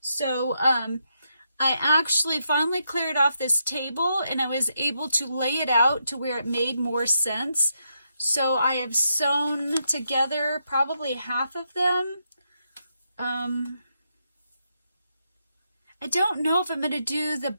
I actually finally cleared off this table, and I was able to lay it out to where it made more sense. So I have sewn together probably half of them. I don't know if I'm going to do the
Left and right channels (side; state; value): both; inverted; correlation -0.81